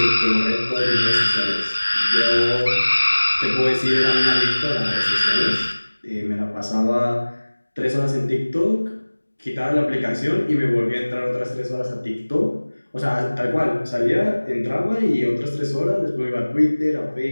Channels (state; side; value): inverted; both; correlation -1.00